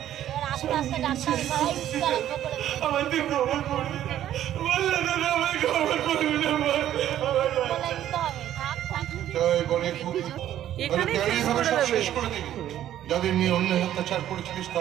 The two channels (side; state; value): left; quieter; 11.8 dB